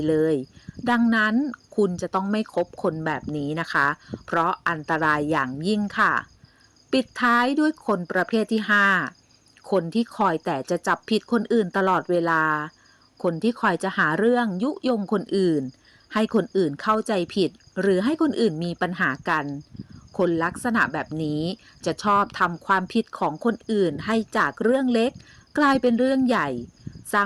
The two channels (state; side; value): identical; both; correlation 1.00